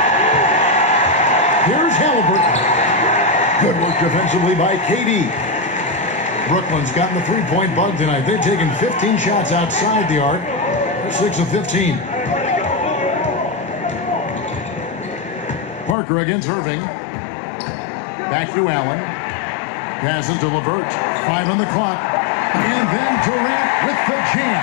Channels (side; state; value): right; drops out; at 16.0 s